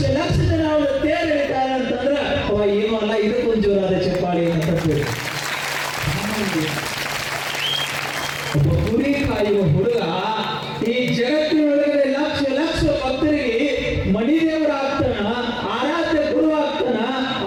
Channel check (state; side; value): identical; both; correlation 1.00